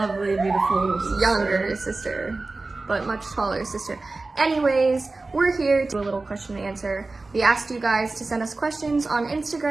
beautiful younger sister, but much taller sister. Anyways, we're here to do a little question and answer. We asked you guys to send us questions on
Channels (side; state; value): left; quieter; 3.4 dB